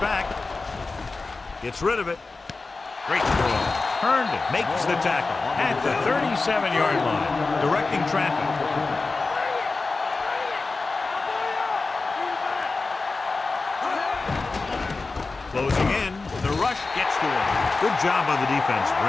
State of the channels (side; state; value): right; quieter; 3.8 dB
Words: Gets rid of it. Great throw. Herndon makes the tackle at the 37-yard line. Directing traffic. Closing in. The rush gets to him. Good job by the defense